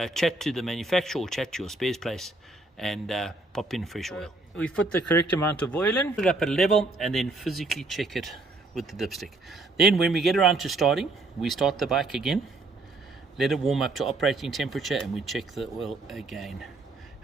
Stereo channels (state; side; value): quieter; left; 3.2 dB